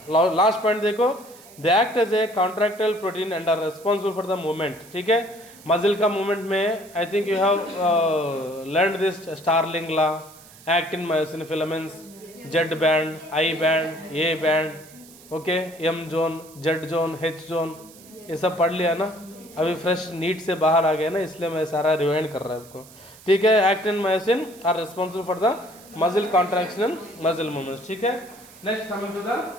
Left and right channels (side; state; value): right; noise; hiss, 22 dB below the sound